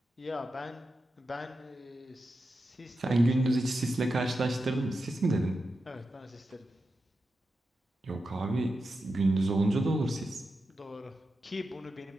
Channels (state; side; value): normal; both; correlation 0.89